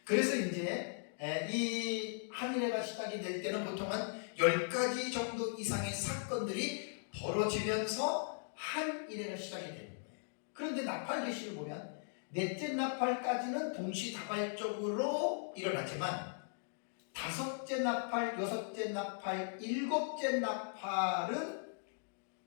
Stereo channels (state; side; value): silent; right; digital silence